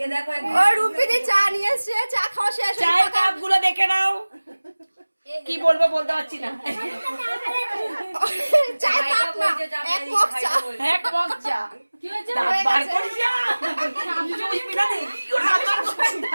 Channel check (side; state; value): both; inverted; correlation -1.00